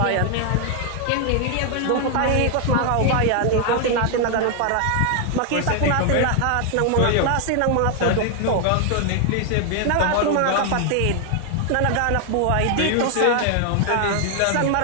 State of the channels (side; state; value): both; different; correlation 0.00